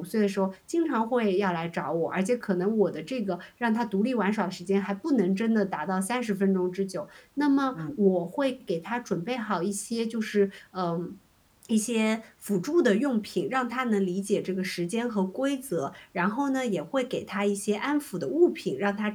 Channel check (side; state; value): both; identical; correlation 1.00